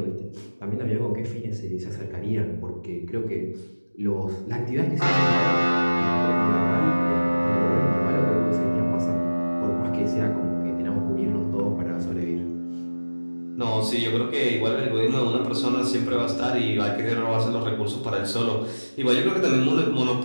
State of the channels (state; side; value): inverted; both; correlation -1.00